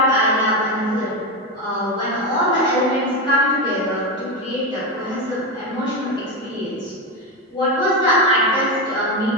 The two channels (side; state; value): both; normal; correlation 0.14